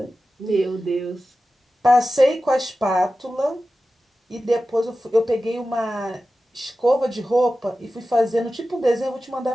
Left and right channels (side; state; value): both; normal; correlation 0.94